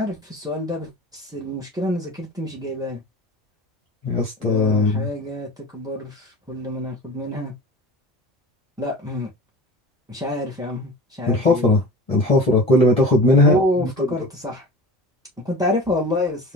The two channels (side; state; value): both; normal; correlation 0.36